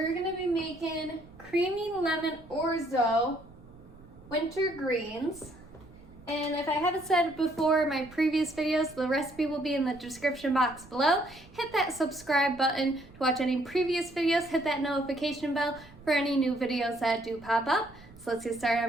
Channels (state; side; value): noise; right; rumble, 24 dB below the sound